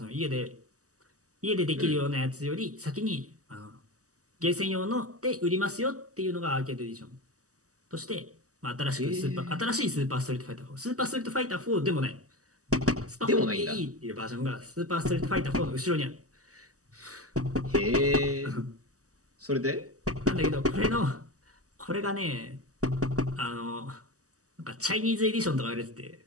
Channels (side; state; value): left; late; 0.66 ms